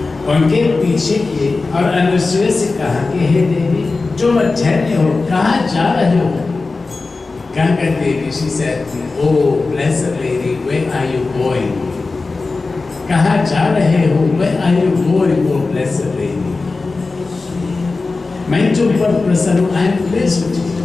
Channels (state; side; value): quieter; right; 3.8 dB